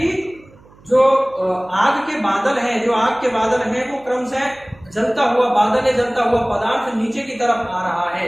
जो आग के बादल हैं, जो आग के बादल हैं वो क्रमशः जलता हुआ बादल है, जलता हुआ पदार्थ नीचे की तरफ आ रहा है।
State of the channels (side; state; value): right; noise; hum, 26 dB below the sound